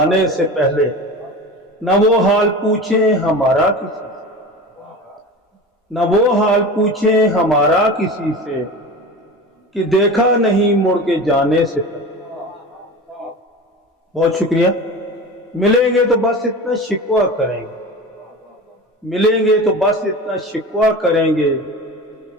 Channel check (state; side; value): normal; both; correlation 0.32